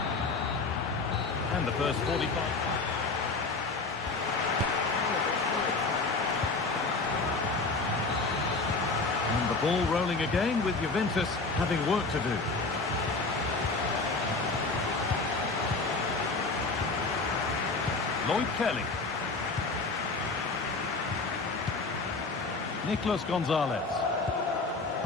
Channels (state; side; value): quieter; right; 3.8 dB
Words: And the first 45. And the ball rolling again with Juventus having work to do. Lloyd Kelly. Nicolas Gonzalez.